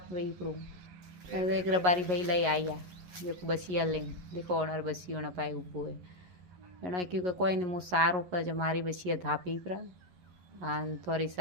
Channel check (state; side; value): late; left; 11 ms